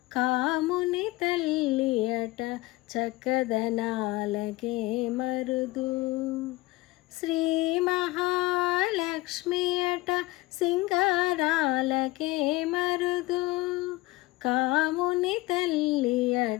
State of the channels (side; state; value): right; quieter; 20.1 dB